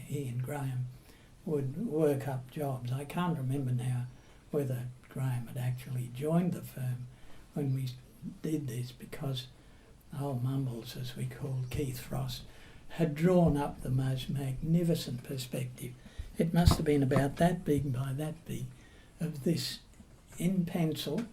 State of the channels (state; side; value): identical; both; correlation 1.00